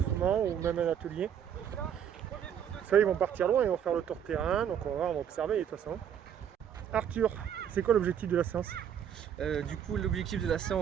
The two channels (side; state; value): left; quieter; 8.8 dB